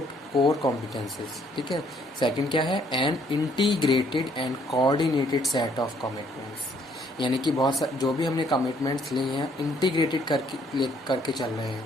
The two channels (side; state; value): both; normal; correlation 0.65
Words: core competencies। ठीक है, सेकंड क्या है, an integrated and coordinated set of commitments, यानी कि जो भी हमने कमिटमेंट्स लिए हैं इंटीग्रेटेड करके चल रहे हैं,